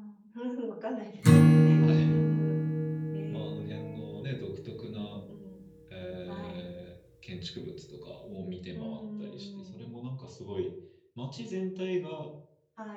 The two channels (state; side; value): identical; both; correlation 1.00